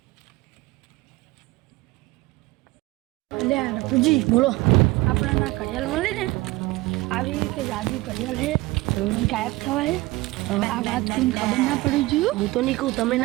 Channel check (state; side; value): quieter; left; 20.3 dB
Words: લે પૂજી બોલો આપણે ના ઘડિયાળ મળે ને આવી કે જાદુ ઘડિયાળ હે ગાયબ થવાય આ વાત તમને ખબર ના પડી જોઈએ હું તો નહીં કહું તમે